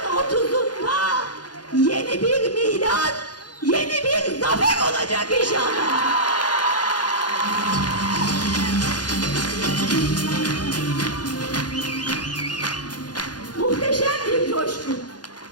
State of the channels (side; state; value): right; late; 0.69 ms